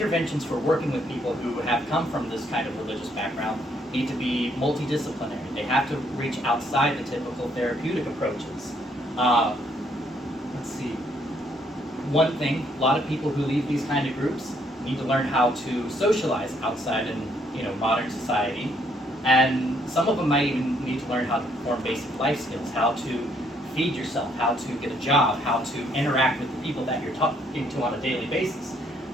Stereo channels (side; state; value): both; normal; correlation 0.69